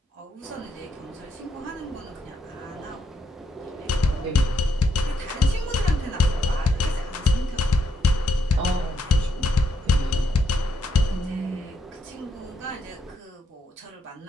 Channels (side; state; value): both; normal; correlation 0.77